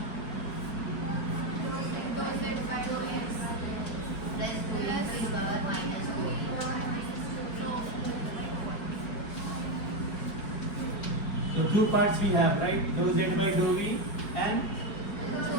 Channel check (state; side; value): late; right; 5.5 ms